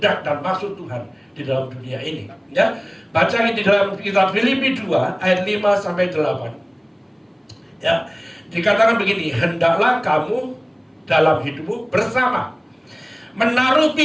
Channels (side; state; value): both; identical; correlation 1.00